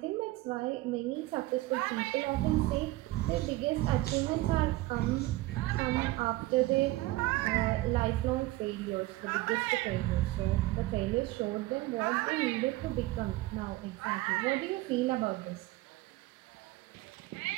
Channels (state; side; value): quieter; left; 18.4 dB